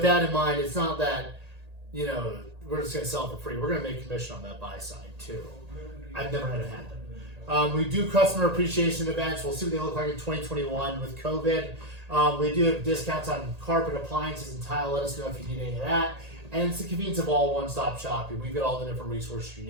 that in mind, it's not that, you know, we're just going to sell it for free. We're going to make commission on that buy side too. I've never had it happen. We do customer appreciation events. We'll see what they look like in 2021 with COVID. We do have discounts on carpet, appliances, and tile. Let us know if you need any of that. And it's the convenience of all one-stop shopping. We've got all the different resources you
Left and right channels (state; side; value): late; left; 1.8 ms